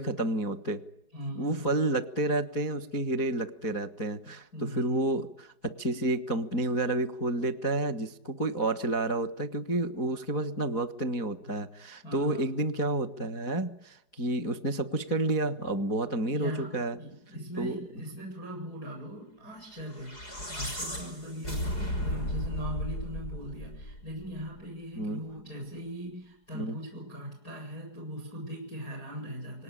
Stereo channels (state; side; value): late; right; 4.8 ms